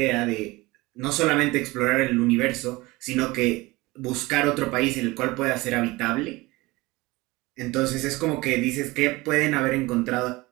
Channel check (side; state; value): left; quieter; 21.5 dB